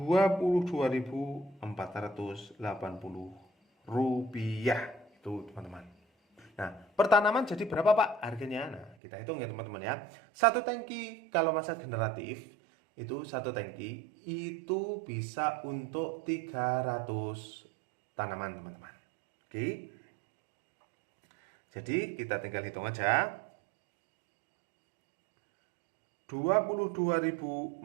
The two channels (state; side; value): drops out; left; at 9.0 s